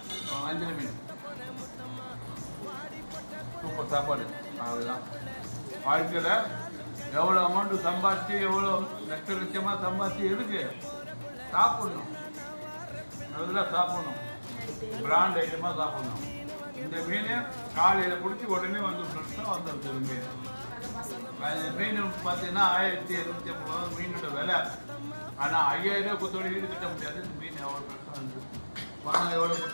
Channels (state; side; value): inverted; both; correlation -1.00